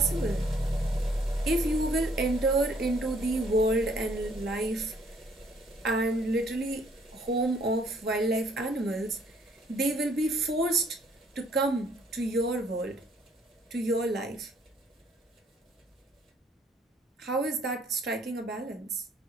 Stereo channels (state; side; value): normal; both; correlation 0.64